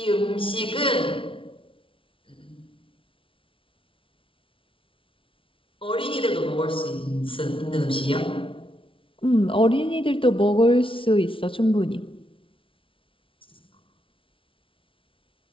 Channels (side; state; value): right; late; 0.25 ms